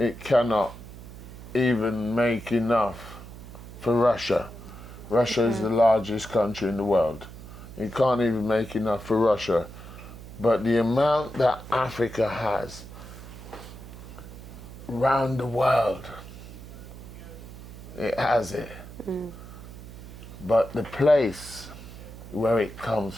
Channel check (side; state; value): right; noise; hum, 14 dB below the sound